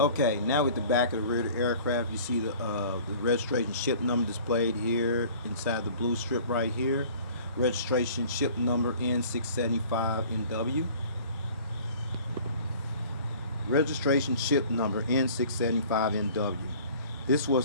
now with the back of the rear of the aircraft, you see the registration ship number displayed here inside the blue strip right here. Registration ship number N675NW. Registration ship number N675NW. This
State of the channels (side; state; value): both; inverted; correlation -0.48